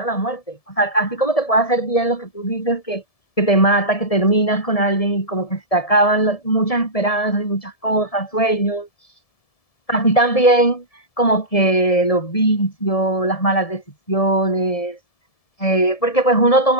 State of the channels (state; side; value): late; right; 1.7 ms